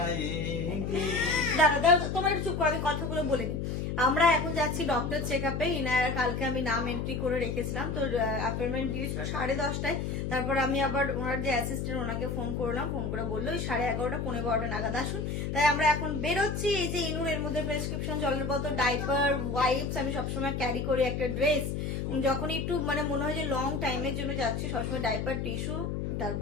দাদা তোমার একটু চুপ করো, আমি কথাগুলো বলে নি। আমরা এখন যাচ্ছি ডক্টর চেক আপে। ইনায়ার কালকে আমি নাম এন্ট্রি করে রেখেছিলাম, তো অ্যাপয়েন্টমেন্ট দিয়েছিল 10:30টায়। তারপর আমি আবার ওনার যে অ্যাসিস্ট্যান্ট ওনাকে ফোন করলাম, ফোন করে বললো 11:30 11:15 নাগাদ আসুন। তাই আমরা এখন বেরোচ্ছি। এই যে ইনুর এর মধ্যে প্রেসক্রিপশন, জলের বোতল, ডাইপার, ওয়াইপস আমি সবসময় ক্যারি করি, একটা ড্রেস। যখন একটু মনে হয় যে লং টাইমের জন্য যাচ্ছি, সবসময় ডাইপার, টিস্যু,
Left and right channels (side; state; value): left; noise; hum, 2 dB below the sound